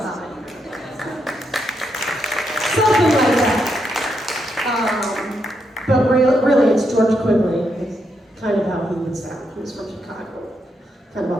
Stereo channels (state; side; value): normal; both; correlation 0.81